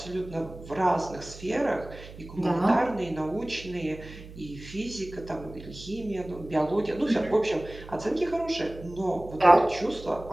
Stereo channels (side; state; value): right; noise; hum, 16 dB below the sound